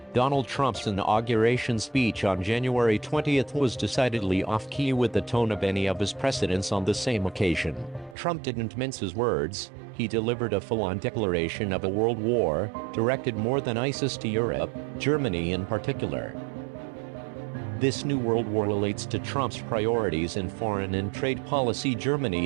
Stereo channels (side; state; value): left; drops out; at 8.2 s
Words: Donald Trump's inauguration speech on January 20th was decidedly off-key with the tone of any of his precedents on the same occasion. Trump didn't mince his words. He delivered a full-on declaration of a world war, directed more than ISIS to Europe, Germany in particular. This new world war relates to Trump's priorities in foreign and trade policy. Germany